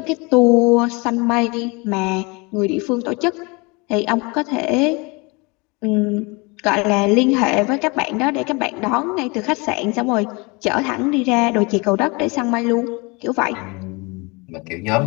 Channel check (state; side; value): quieter; right; 27.9 dB